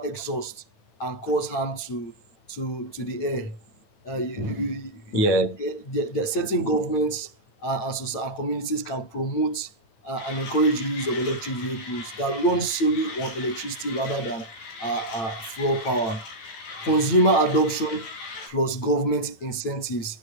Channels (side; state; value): right; late; 9.0 ms